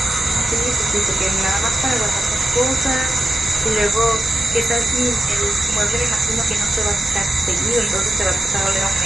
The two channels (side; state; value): both; normal; correlation 0.90